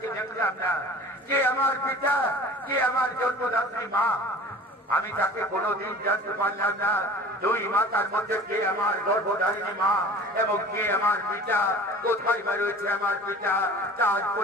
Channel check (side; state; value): both; normal; correlation 0.43